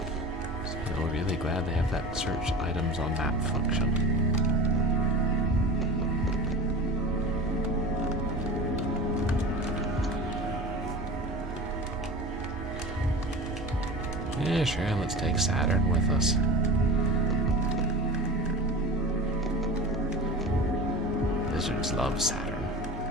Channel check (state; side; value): normal; both; correlation 0.32